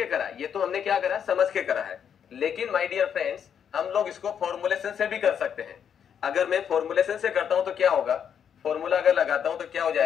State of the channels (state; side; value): quieter; right; 8.1 dB